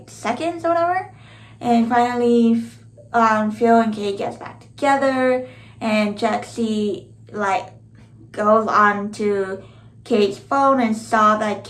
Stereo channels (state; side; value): identical; both; correlation 1.00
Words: seconds or whatever. And finally, Phil and Kate gets back together, and Jexi like goes on to Kate's phone and saw that